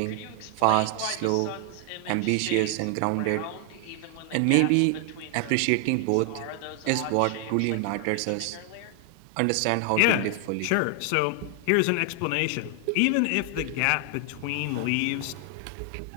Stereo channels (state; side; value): different; both; correlation 0.00